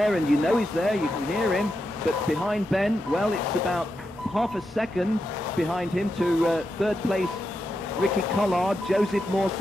and you know he's there. You can hear him. But behind Ben, well, it's about half a second behind him to third place Ricky Collard. Joseph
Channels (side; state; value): both; normal; correlation 0.86